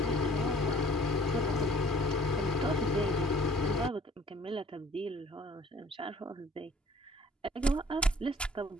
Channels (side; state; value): both; normal; correlation 0.54